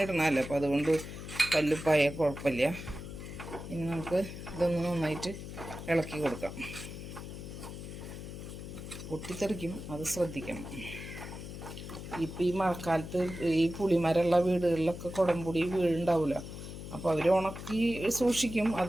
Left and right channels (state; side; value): noise; left; hum, 10 dB below the sound